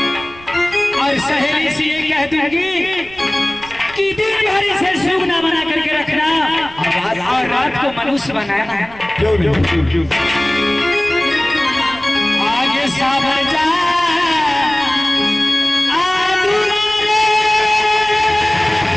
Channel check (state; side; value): noise; right; rumble, 21 dB below the sound